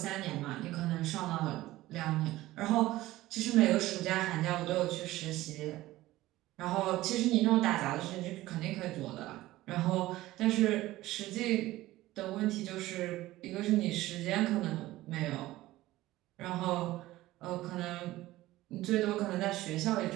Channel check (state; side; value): quieter; left; 16.8 dB